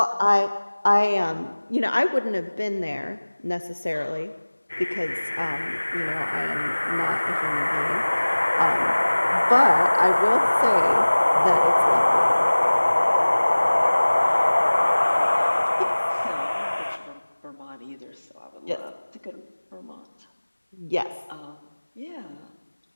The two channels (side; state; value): both; inverted; correlation -1.00